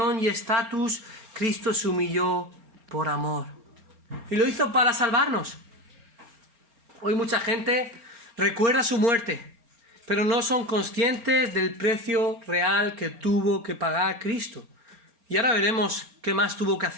y estatus, Cristo se humilló por amor. Y lo hizo para salvarnos. Hoy mucha gente recuerda su muerte, pero no son conscientes del precio real que tuvo que pagar Cristo. Y ahora veremos qué más tuvo que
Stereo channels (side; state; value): left; late; 4.3 ms